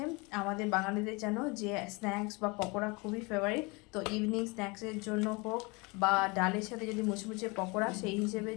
আমাদের বাঙালিদের জানো যে স্ন্যাক্স বা পকোড়া খুবই ফেভারিট। তো ইভিনিং স্ন্যাক্সের জন্য হোক বা ডালের সাথে যদি মুচমুচে পকোড়া, সেই হিসেবের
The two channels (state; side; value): quieter; right; 27.5 dB